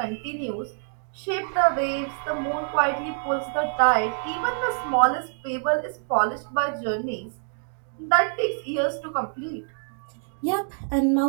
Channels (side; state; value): left; silent; 61 dB below the other